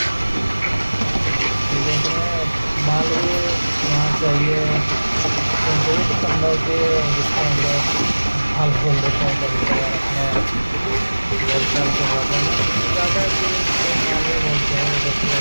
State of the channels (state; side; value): inverted; both; correlation -1.00